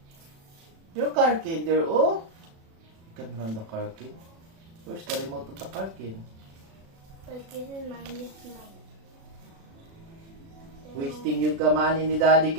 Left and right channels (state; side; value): late; left; 36 ms